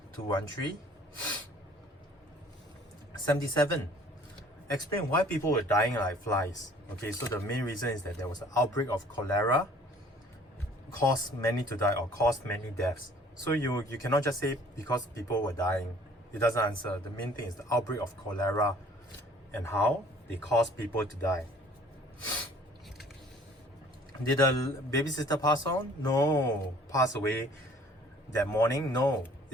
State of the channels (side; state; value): both; normal; correlation 0.54